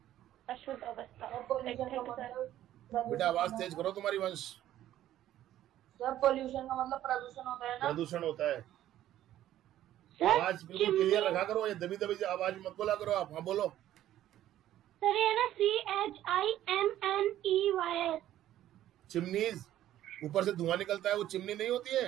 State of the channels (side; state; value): left; quieter; 12.8 dB